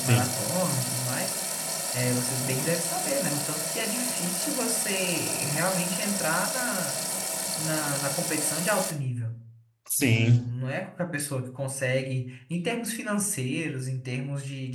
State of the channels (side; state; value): both; identical; correlation 1.00